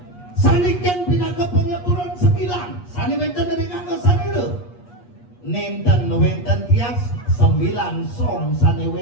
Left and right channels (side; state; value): right; late; 8.4 ms